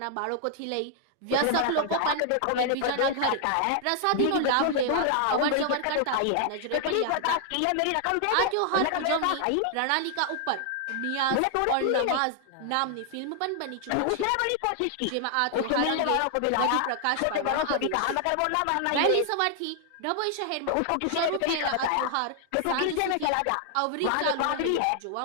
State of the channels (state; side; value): different; both; correlation 0.00